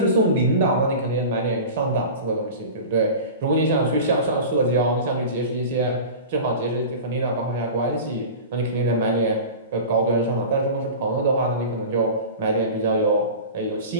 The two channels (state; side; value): inverted; both; correlation -0.33